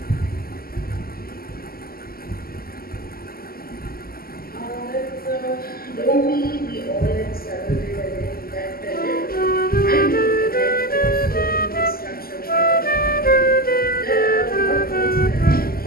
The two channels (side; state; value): right; late; 0.43 ms